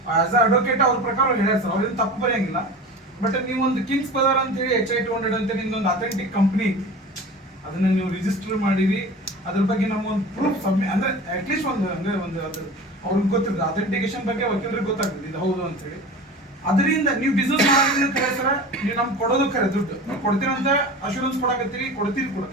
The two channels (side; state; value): both; normal; correlation 0.35